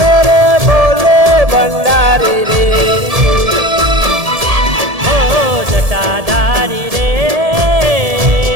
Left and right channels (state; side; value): late; left; 1.7 ms